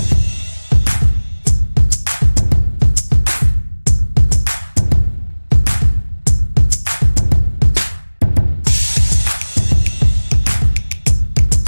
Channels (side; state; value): both; inverted; correlation -1.00